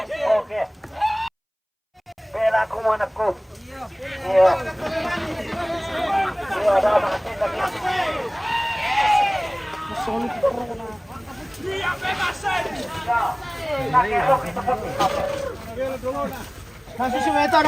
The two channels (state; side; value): identical; both; correlation 1.00